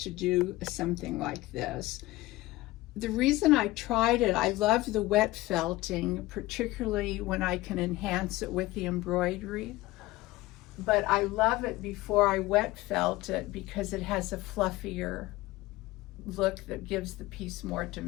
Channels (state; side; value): quieter; right; 18.4 dB